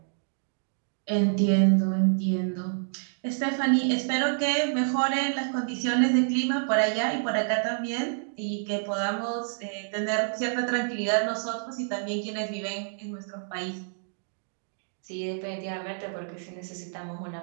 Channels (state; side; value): silent; left; digital silence